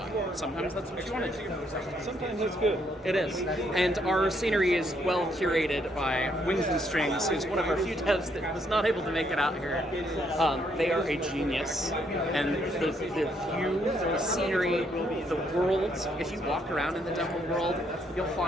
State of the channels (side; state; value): both; normal; correlation 0.72